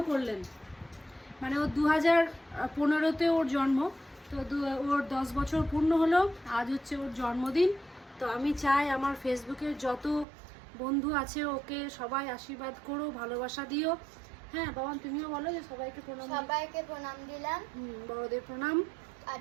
করলেন। মানে ও 2015-তে ওর জন্ম, তো ওর 10 বছর পূর্ণ হলো, আজ হচ্ছে ওর জন্মদিন। তো আমি চাই আমার ফেসবুকের যত বন্ধু আছে ওকে সবাই আশীর্বাদ করো, ভালোবাসা দিও। হ্যাঁ বাবা, তুমিও বলো যে সবাইকে প্রণাম। সবাইকে প্রণাম দিলাম, বড়দের প্রণাম আর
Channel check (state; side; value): drops out; left; at 10.2 s